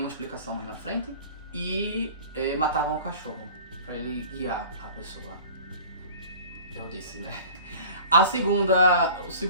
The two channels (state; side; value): inverted; both; correlation -0.43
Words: explicação mais na frente. E matavam o cachorro para ele guiar a pessoa. Eu disse, né? O